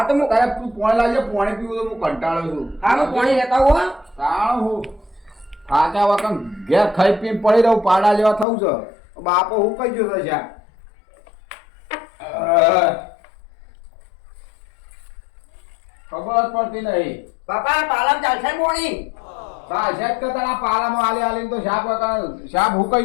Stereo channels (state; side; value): drops out; right; at 8.5 s